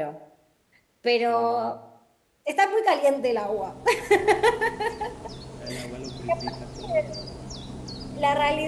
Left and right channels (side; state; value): both; identical; correlation 1.00